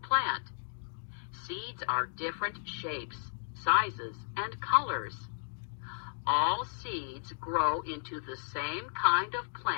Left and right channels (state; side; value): silent; right; digital silence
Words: Seeds are different shapes, sizes, and colors. All seeds grow into the same kind of